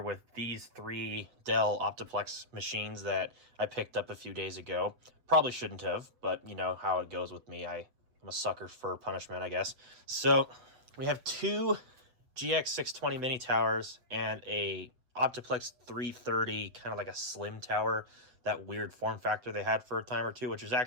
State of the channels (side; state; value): left; late; 7.7 ms